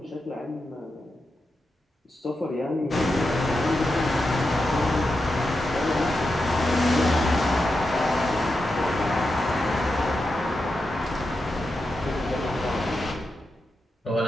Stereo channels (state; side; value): normal; both; correlation 0.88